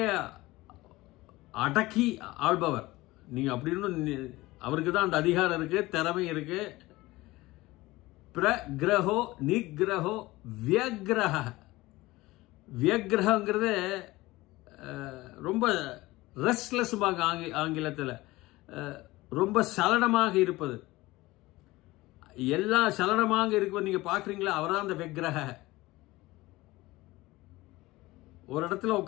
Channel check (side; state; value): right; quieter; 19.5 dB